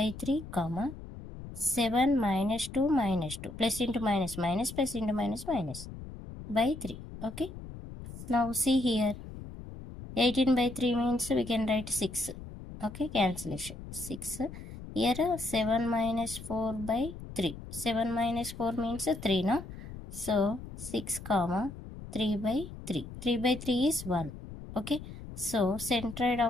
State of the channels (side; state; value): left; noise; rumble, 12 dB below the sound